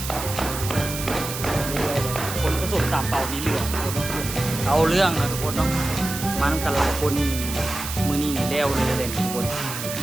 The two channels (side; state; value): right; noise; hiss, 7 dB below the sound